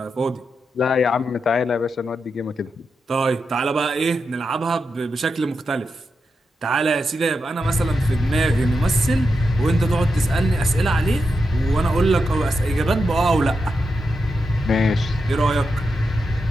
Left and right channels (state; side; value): normal; both; correlation 0.87